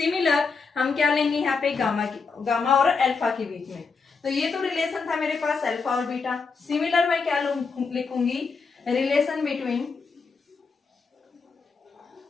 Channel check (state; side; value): quieter; right; 4.9 dB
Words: हम क्या लेंगे यहाँ पे गामा और अल्फा के बीच में। तो ये तो रिलेशन था मेरे पास अल्फा और बीटा। सिमिलर मैं क्या लिखूंगी relation between